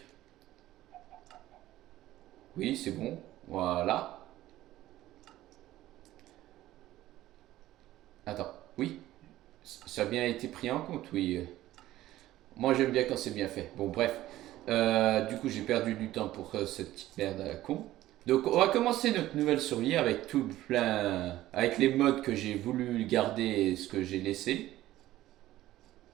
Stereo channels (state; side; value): quieter; left; 15.1 dB